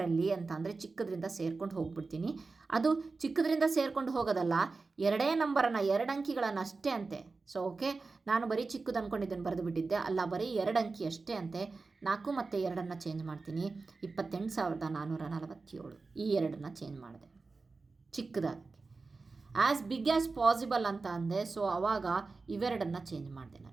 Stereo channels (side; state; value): left; quieter; 4.0 dB